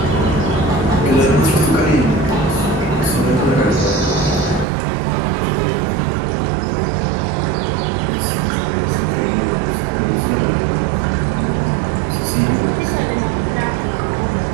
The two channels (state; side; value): drops out; left; at 4.7 s